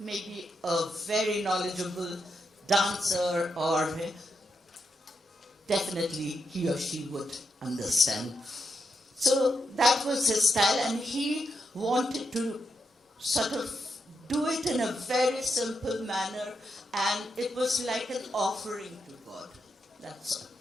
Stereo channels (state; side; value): normal; both; correlation 0.83